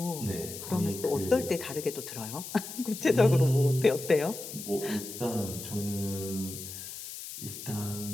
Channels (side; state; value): left; noise; hiss, 10 dB below the sound